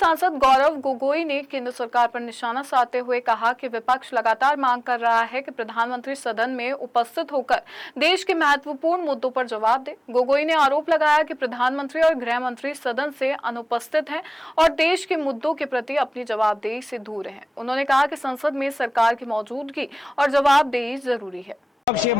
गौरव गोगोई ने केंद्र सरकार पर निशाना साधते हुए कहा कि विपक्ष लगातार मांग कर रहा है कि प्रधानमंत्री सदन में उपस्थित होकर देश के महत्वपूर्ण मुद्दों पर जवाब दे। गोगोई ने आरोप लगाया कि प्रधानमंत्री और गृह मंत्री सदन से अनुपस्थित हैं और देश के मुद्दों के प्रति अपनी जवाबदेही से दूर हैं। उन्होंने कहा कि संसद में सरकार की मौजूदगी और जवाबदेही जरूरी है। विपक्ष ये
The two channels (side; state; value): both; normal; correlation 0.98